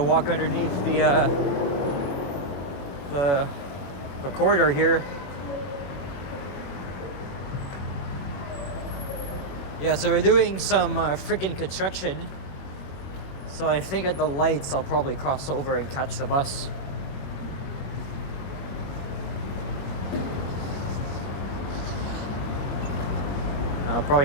walk underneath the corridor here. Yeah, so we're doing some freaking construction. So I think at the lights I'll probably cross over and catch the bus. I'll probably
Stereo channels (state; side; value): late; right; 21 ms